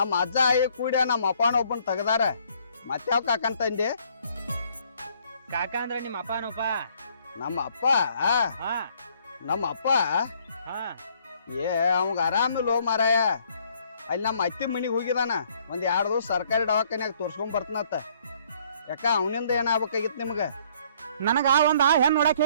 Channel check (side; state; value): both; inverted; correlation -0.63